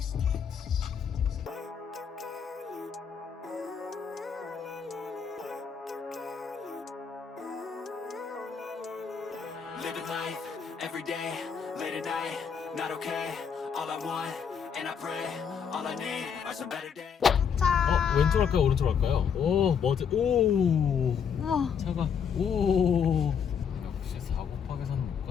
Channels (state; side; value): quieter; right; 7.0 dB